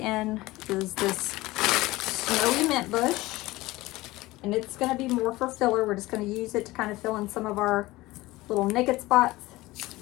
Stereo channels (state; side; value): quieter; right; 19.2 dB